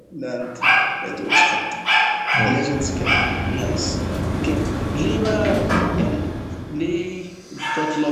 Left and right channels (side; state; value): both; identical; correlation 1.00